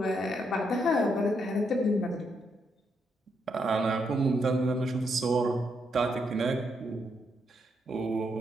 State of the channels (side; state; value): both; normal; correlation 0.78